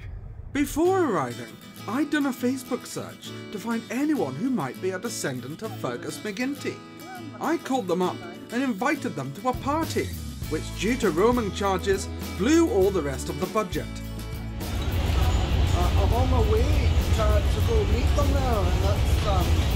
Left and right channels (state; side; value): identical; both; correlation 1.00